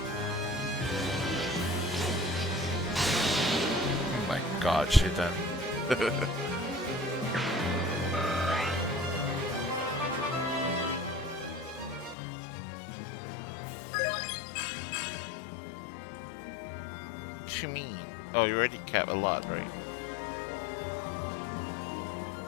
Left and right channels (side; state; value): right; drops out; at 12.2 s